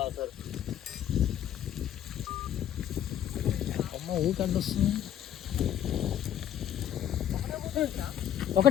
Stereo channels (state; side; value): quieter; right; 10.5 dB